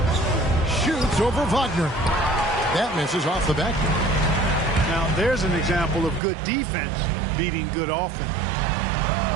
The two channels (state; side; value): drops out; left; at 6.2 s